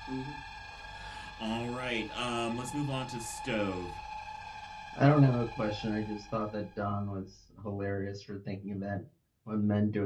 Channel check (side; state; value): both; identical; correlation 1.00